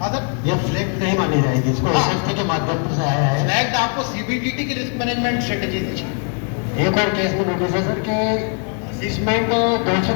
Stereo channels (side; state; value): right; quieter; 39.9 dB